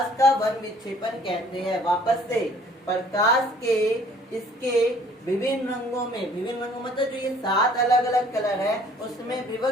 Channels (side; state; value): both; normal; correlation 0.56